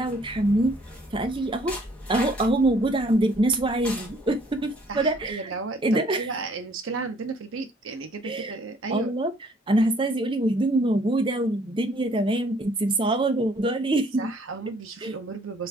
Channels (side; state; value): both; normal; correlation 0.60